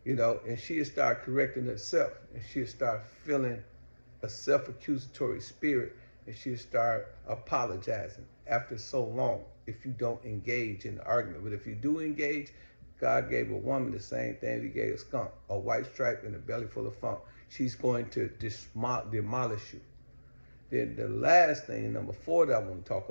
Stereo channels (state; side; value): inverted; both; correlation -1.00